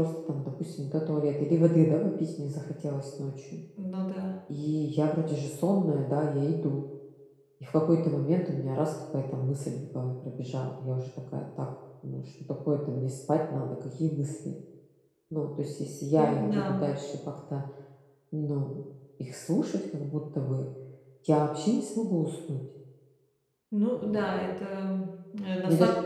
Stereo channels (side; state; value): both; identical; correlation 1.00